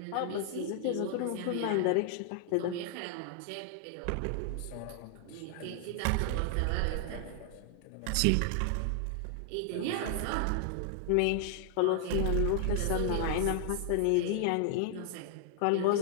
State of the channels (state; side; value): different; both; correlation 0.00